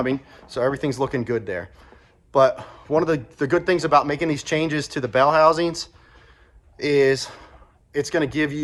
So everything's looking good there. But one of the good things about making these changes to the bell housings is it's going to give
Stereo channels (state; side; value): identical; both; correlation 1.00